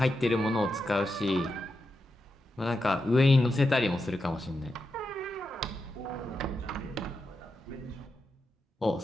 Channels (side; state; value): both; normal; correlation 0.87